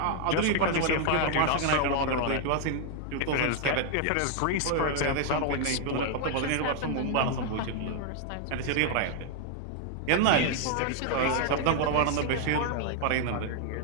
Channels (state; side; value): different; both; correlation 0.00